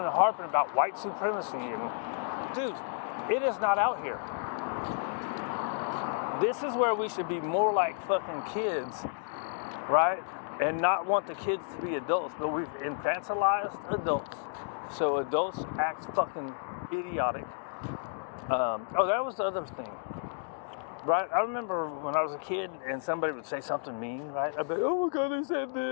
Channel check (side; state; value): right; silent; digital silence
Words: harping about white supremacy. And dude, it is not out here. This is where we should be more like fucking kids, right? And not want the kids to be adults, but we've infantilized adults. So adults act fucking idiotic. That was the other thing, right? I remember when I was a kid and somebody would say something mean, right? I'd be like, oh my God, they said